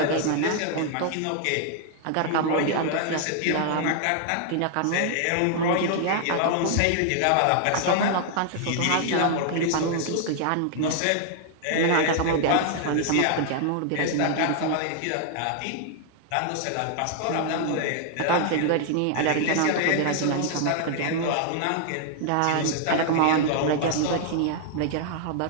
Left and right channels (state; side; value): different; both; correlation 0.00